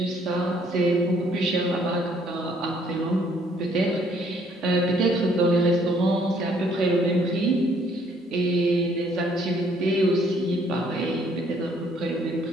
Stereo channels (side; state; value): both; normal; correlation 0.64